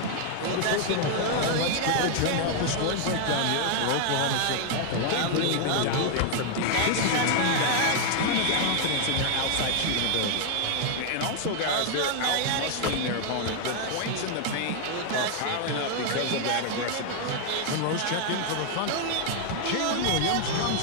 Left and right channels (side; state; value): both; different; correlation 0.00